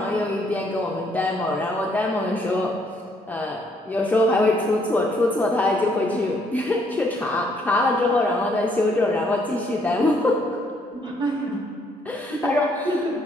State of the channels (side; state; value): both; normal; correlation 0.69